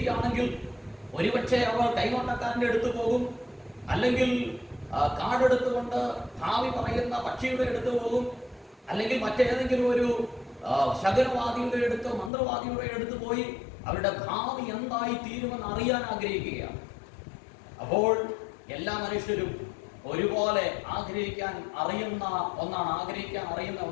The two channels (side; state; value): right; drops out; at 12.3 s